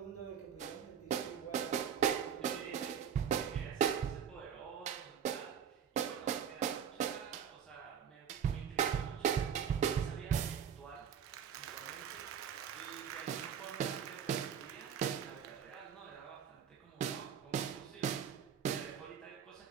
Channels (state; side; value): quieter; left; 8.1 dB